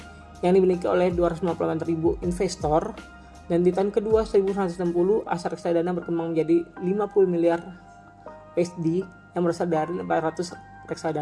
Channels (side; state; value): both; identical; correlation 1.00